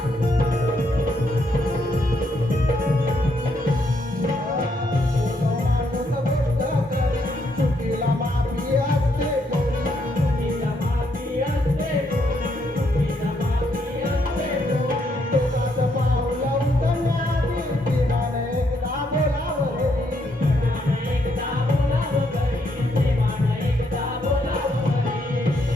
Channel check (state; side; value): normal; both; correlation 0.74